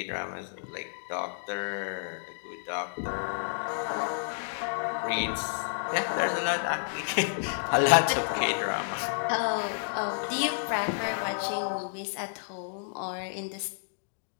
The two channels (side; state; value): right; silent; digital silence